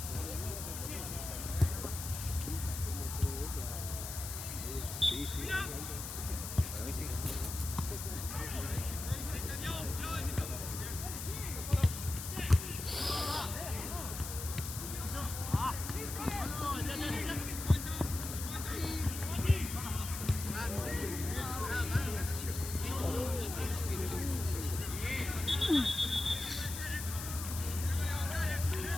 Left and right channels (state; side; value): noise; left; hiss, 7 dB below the sound